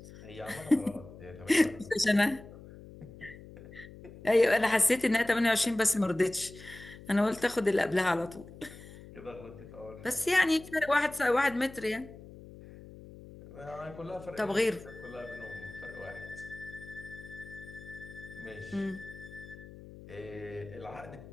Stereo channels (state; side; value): noise; left; hum, 17 dB below the sound